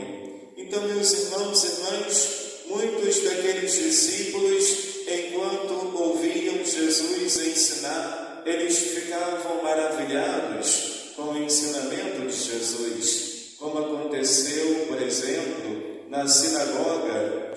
Então, meus irmãos e irmãs, muitos daqueles discípulos, enquanto ouviam Jesus ensinar, eles ficavam maravilhados com o ensinamento de Jesus, como aconteceu, por exemplo, na sinagoga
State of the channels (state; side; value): identical; both; correlation 1.00